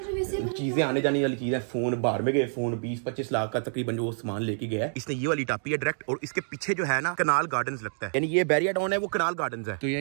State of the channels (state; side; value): silent; left; digital silence